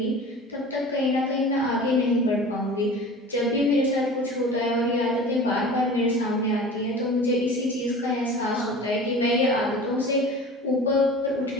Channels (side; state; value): both; normal; correlation 0.39